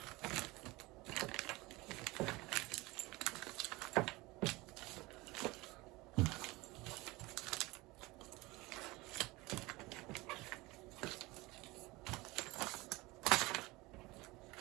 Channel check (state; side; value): quieter; left; 22.0 dB